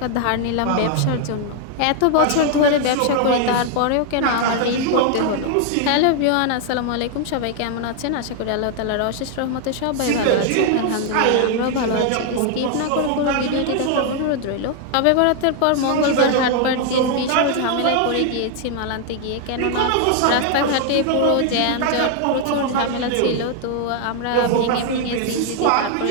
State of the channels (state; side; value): different; both; correlation 0.00